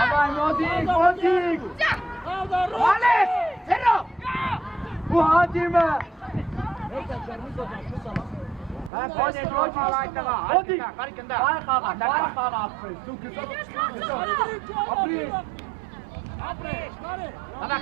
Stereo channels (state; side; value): drops out; left; at 8.9 s